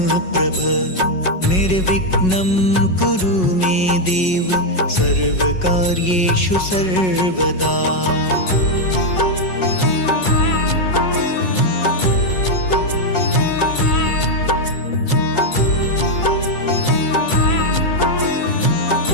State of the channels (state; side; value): late; right; 5.4 ms